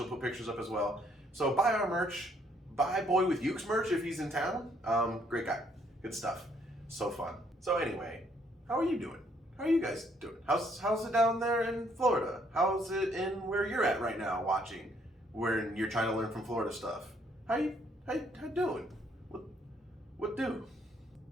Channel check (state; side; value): normal; both; correlation 0.68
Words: put pictures up as well. So buy our merch. Buy Boy with Uke's merch if he's in town. Great guy. Good stuff. So fun. So anyway, how are you doing? How are you guys doing? How's it down there in Florida? How's it in where you're at right now watching? Where you're trying to learn from Florida stuff. How you doing? What do?